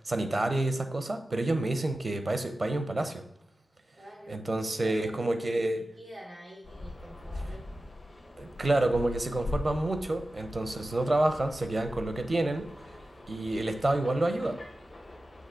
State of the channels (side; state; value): both; normal; correlation 0.94